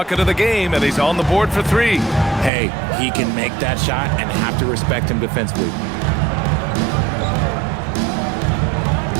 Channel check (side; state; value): left; drops out; at 2.5 s